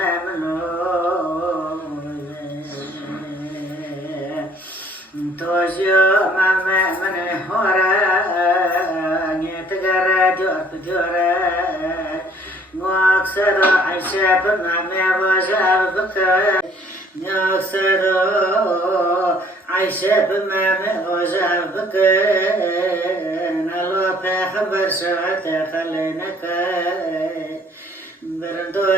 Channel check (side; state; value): both; normal; correlation 0.58